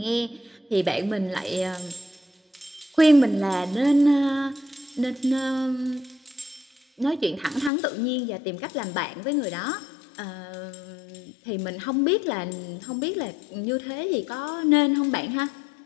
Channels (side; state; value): right; drops out; at 7.7 s